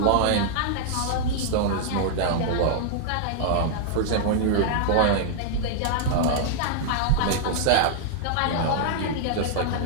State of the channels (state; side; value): different; both; correlation -0.01